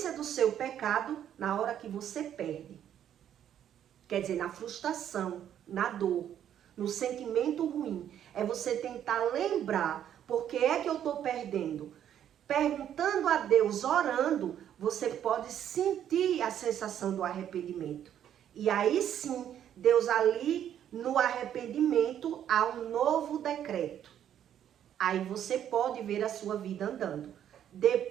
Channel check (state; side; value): quieter; left; 10.1 dB